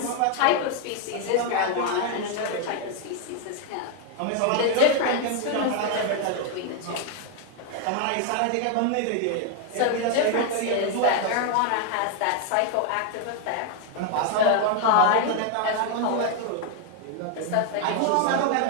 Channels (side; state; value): both; different; correlation 0.00